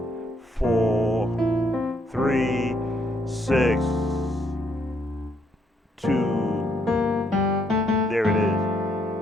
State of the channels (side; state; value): both; normal; correlation 0.72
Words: 4, 3, 6, 2. There it is.